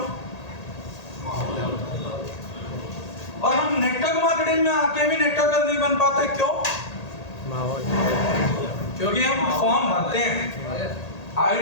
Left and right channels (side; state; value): right; late; 1.8 ms